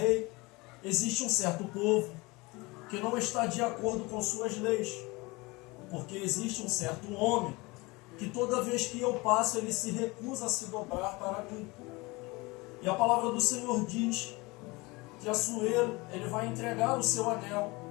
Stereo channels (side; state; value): right; quieter; 24.1 dB